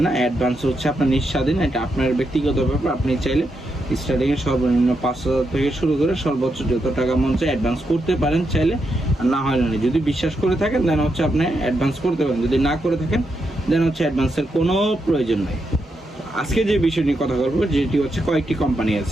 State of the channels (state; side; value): normal; both; correlation 0.83